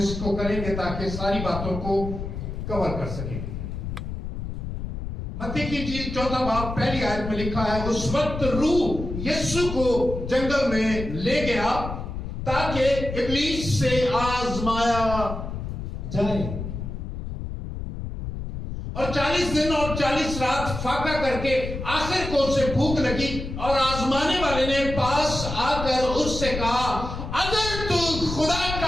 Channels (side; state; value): left; noise; rumble, 6 dB below the sound